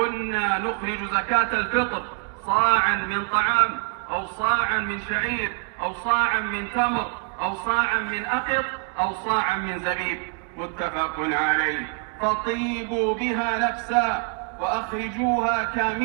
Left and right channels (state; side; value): quieter; left; 38.2 dB